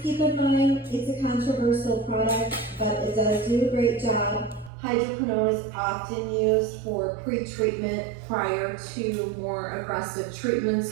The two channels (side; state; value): left; drops out; at 4.7 s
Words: keep in mind, it's a controversial product, but it does do a great job. Hydroquinone is often used for pre-treatment prior to more aggressive treatments.